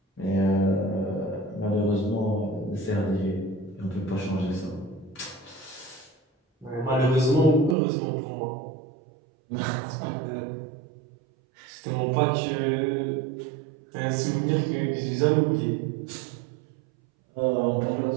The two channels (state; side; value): drops out; left; at 7.8 s